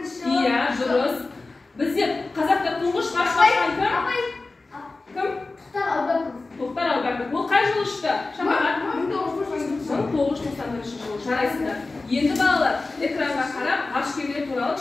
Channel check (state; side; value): quieter; right; 3.4 dB